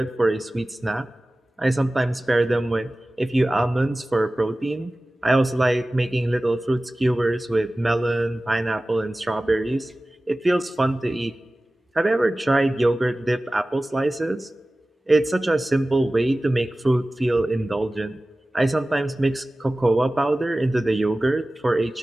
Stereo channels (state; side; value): normal; both; correlation 0.97